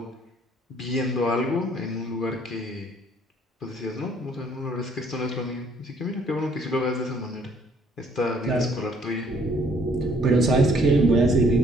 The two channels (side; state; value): both; normal; correlation 0.62